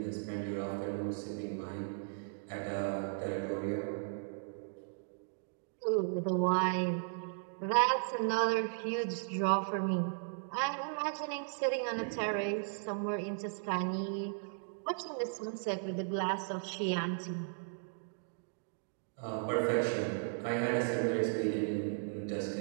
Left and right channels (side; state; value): left; silent; digital silence